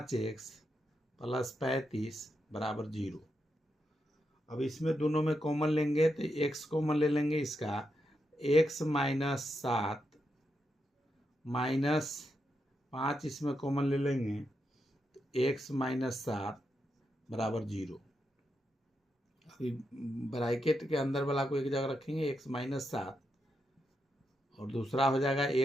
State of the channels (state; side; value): normal; both; correlation 0.84